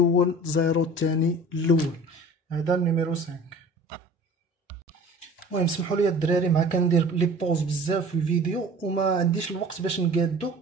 زيرو الثاني الأول. هذا النيميرو 5. المهم سمحوا لي الدراري مع كندير لي بوز بزاف في الفيديو وما عنديش الوقت باش نقادو.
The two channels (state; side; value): normal; both; correlation 0.43